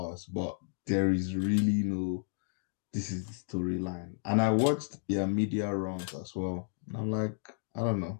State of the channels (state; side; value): silent; right; digital silence